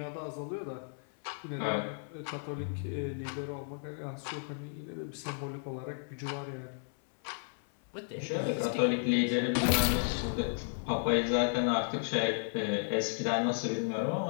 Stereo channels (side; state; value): right; silent; 55 dB below the other